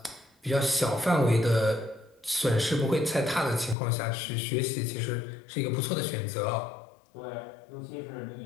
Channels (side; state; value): right; drops out; at 3.8 s